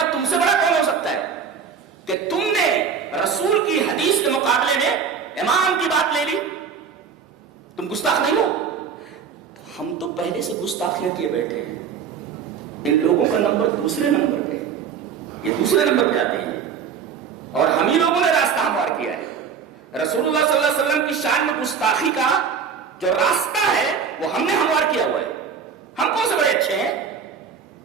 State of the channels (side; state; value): left; quieter; 6.7 dB